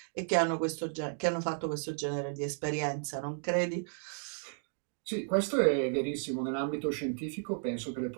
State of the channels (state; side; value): silent; left; digital silence